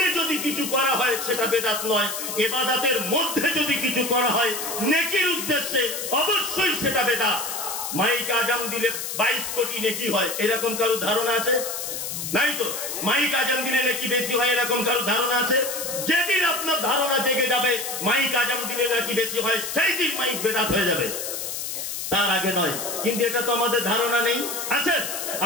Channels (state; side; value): noise; left; hiss, 5 dB below the sound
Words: যদি কিছু করা হয় সেটা বেদাত নয়, ইবাদতের মধ্যে যদি কিছু করা হয় নেকির উদ্দেশ্যে, অবশ্যই সেটা বেদাত। মাইক আজান দিলে 22 কোটি নেকি হয়, এরকম কারো ধারণা আছে? নাই তো। মাইক আজান দিলে নাকি বেশি হয়, এরকম কারো ধারণা আছে? যেদিন আপনার ধারণা জেগে যাবে মাইক আজান দিলে নাকি বেশি হয়, সেই দিন মাইক বেদাত হয়ে যাবে, তার আগে নয়। কিন্তু এটা তো আমাদের ধারণা নেই, আছে?